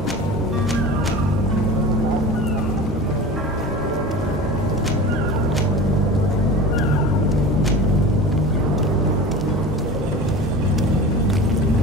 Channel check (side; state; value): both; normal; correlation 0.34